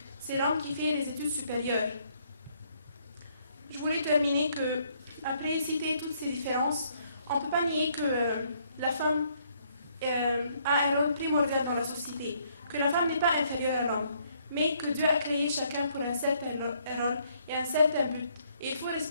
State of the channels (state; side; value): inverted; both; correlation -0.68